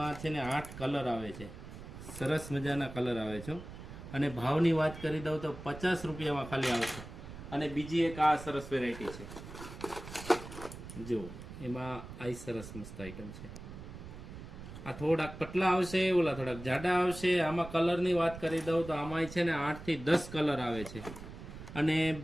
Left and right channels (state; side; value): noise; right; rumble, 13 dB below the sound